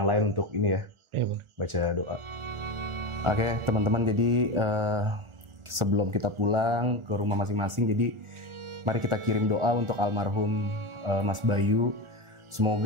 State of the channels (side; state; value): left; late; 1.4 ms